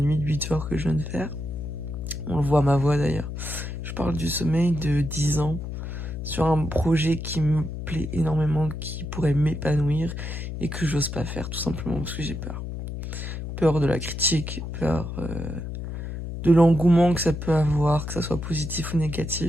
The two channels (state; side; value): noise; left; hum, 6 dB below the sound